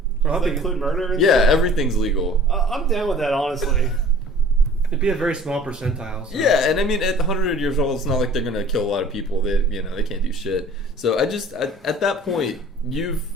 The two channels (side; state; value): both; normal; correlation 0.48